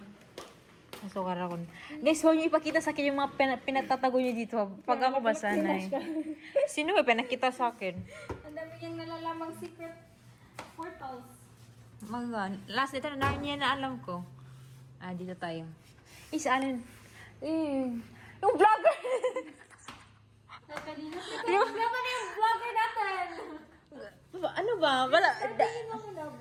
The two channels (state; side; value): identical; both; correlation 1.00